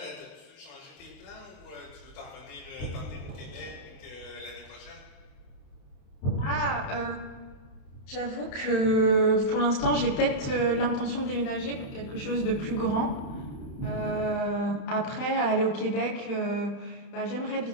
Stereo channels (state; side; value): late; right; 31 ms